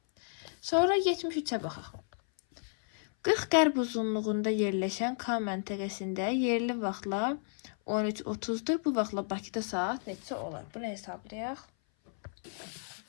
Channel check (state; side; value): silent; right; 56 dB below the other